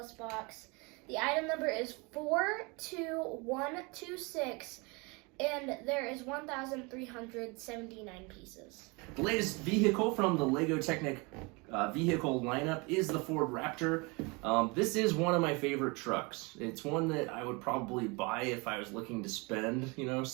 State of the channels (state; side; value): quieter; left; 28.3 dB